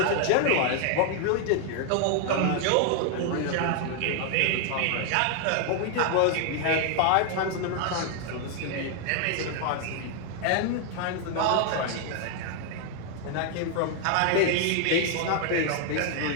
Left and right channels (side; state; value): both; different; correlation 0.00